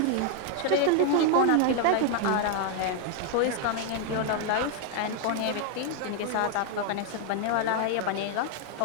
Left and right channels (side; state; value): both; different; correlation 0.00